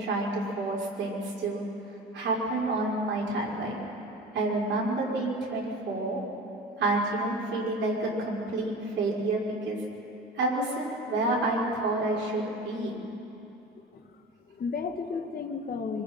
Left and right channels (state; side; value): normal; both; correlation 0.35